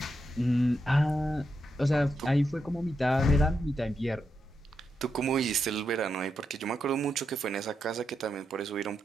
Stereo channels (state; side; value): normal; both; correlation 0.84